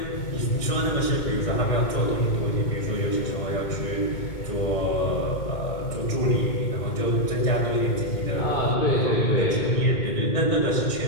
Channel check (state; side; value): late; right; 2.2 ms